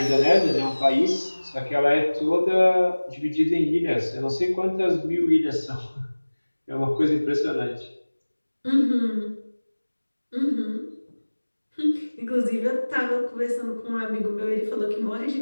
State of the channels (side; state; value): both; inverted; correlation -1.00